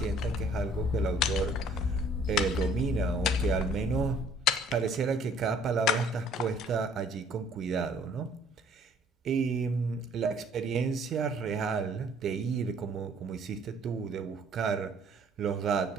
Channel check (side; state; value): both; normal; correlation 0.58